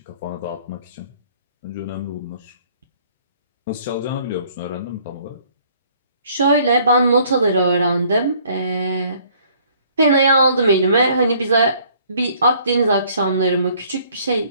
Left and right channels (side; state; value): both; inverted; correlation -0.59